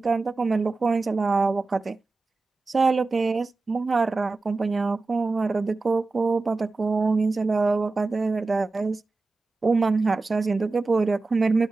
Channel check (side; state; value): left; quieter; 3.6 dB